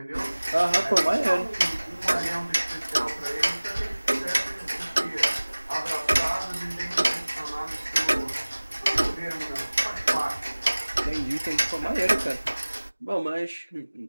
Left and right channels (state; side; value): inverted; both; correlation -1.00